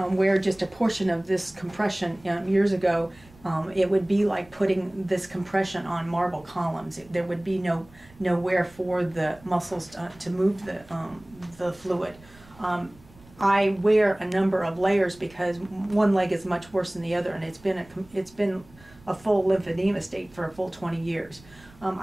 wear just a portion of this compression years ago, it would be like putting this compression on marble columns. There would be nowhere for the muscles to move the fluid. I wear a number of layers because one leg is much worse than the other, and it's been a full lymphedema state for a full 20 years.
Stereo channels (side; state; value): right; noise; rumble, 25 dB below the sound